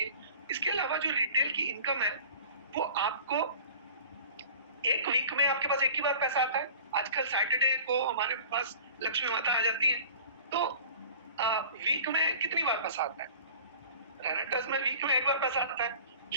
इसके अलावा जो रिटेल की इनकम है वो आपको एक वीक में आपके पास एक ही बार पैसा आता है। आजकल सैटरडे को हमारे पास लक्ष्मी माता आ जाती है, तो वीक में कितनी बार पैसा आता है? रेनेटर्स में वीक में एक बार पैसा आता है।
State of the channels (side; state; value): both; inverted; correlation -0.43